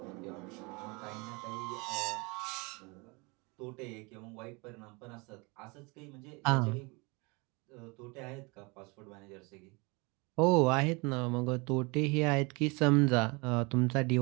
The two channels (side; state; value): left; quieter; 28.0 dB